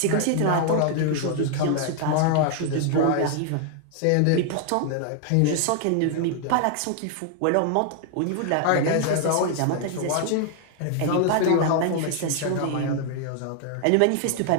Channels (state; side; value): different; both; correlation 0.00